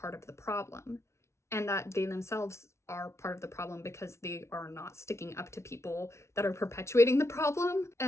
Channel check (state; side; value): late; right; 0.13 ms